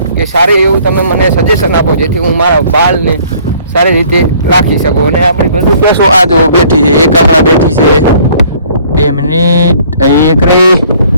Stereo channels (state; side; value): inverted; both; correlation -0.57